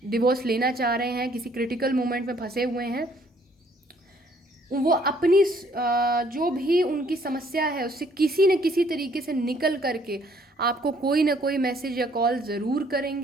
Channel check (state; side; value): normal; both; correlation 0.63